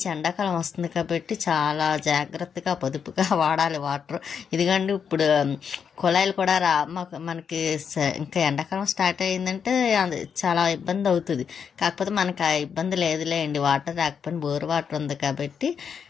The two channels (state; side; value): quieter; right; 7.0 dB